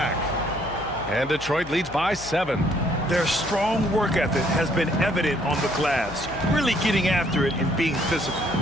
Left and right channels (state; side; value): noise; left; hum, 17 dB below the sound